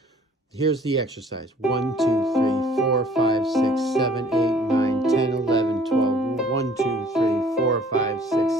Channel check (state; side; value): normal; both; correlation 0.54